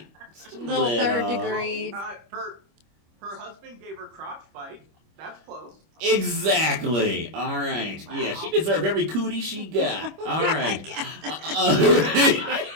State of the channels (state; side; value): late; left; 25 ms